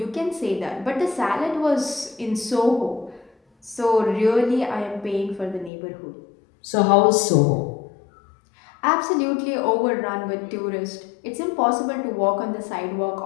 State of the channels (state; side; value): drops out; right; at 5.7 s